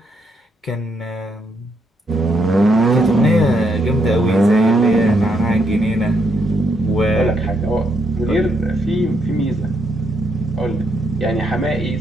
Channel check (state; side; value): normal; both; correlation 0.77